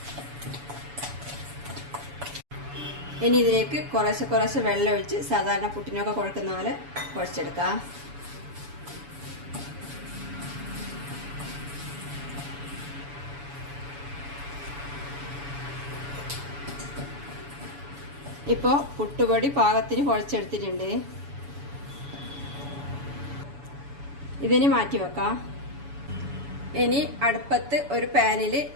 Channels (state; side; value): late; left; 7.0 ms